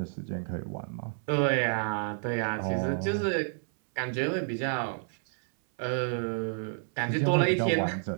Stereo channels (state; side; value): silent; left; 58 dB below the other